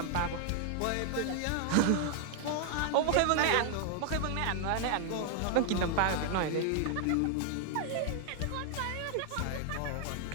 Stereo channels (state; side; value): different; both; correlation 0.00